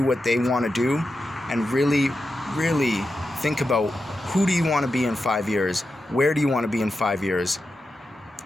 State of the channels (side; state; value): both; normal; correlation 0.89